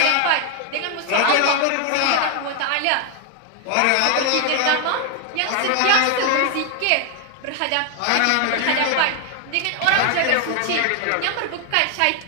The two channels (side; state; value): both; different; correlation 0.00